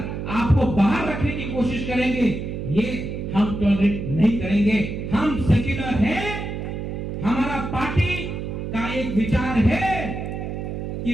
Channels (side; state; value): right; noise; hum, 5 dB below the sound